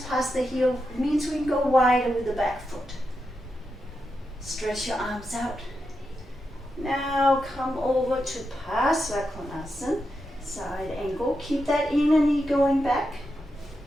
the heel, it means we can go wider with the back foot. Stretch your arms out. Now come over to Pasvakonasana, side angle. Keep that inner knee going back.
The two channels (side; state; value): both; normal; correlation 0.86